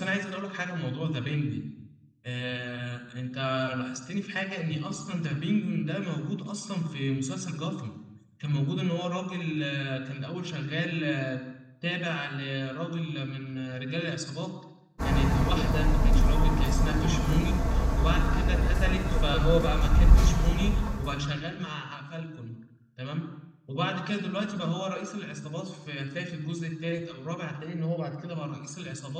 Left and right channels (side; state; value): both; identical; correlation 1.00